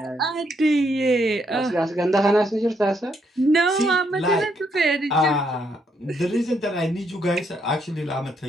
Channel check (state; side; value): normal; both; correlation 0.75